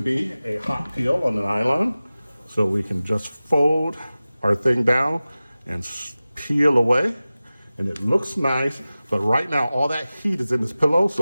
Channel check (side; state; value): both; inverted; correlation -0.97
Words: a hot peel on the nylon, so we can just fold our thing down and peel away, and it looks nice. But right now all that heat is in this pillow, so